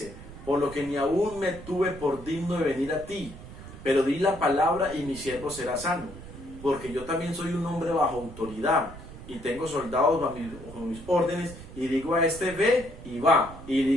por lo que ni aún me tuve por digno de venir a ti, pero di la palabra y mi siervo será sano, porque yo también soy un hombre bajo autoridad, y tengo soldados bajo mis órdenes, y digo a este: ve, y va, y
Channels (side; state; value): right; noise; rumble, 15 dB below the sound